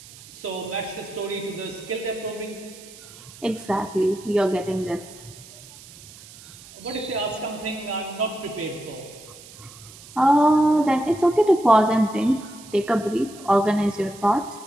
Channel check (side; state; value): right; noise; hiss, 19 dB below the sound